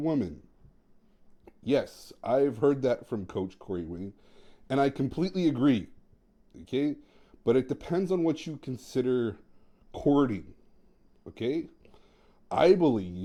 Yes, I've heard that from Coach Corey Wayne, and I completely agree. Okay? But it depends on what you consider courting. Okay? I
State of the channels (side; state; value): both; identical; correlation 1.00